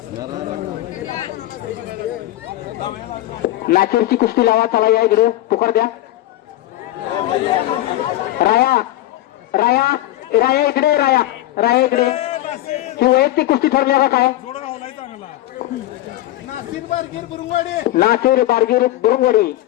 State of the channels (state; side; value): quieter; right; 15.5 dB